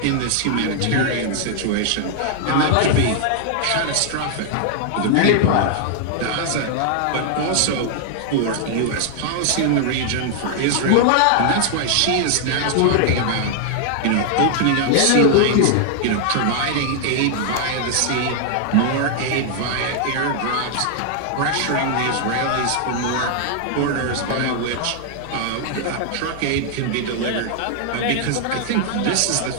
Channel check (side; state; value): both; different; correlation 0.00